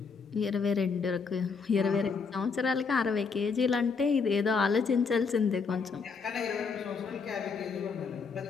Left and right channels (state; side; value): quieter; right; 5.2 dB